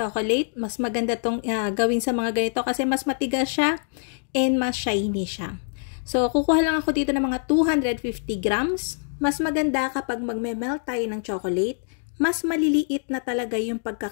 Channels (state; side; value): silent; right; digital silence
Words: Mas maganda tong gawin sa mga ganito kasi mas matigas siya and mas shiny siya. So, kukuha lang ako dito ng mga 250 grams. Mas maganda kapag magme-melt tayo ng chocolate, mas maliliit na talaga yung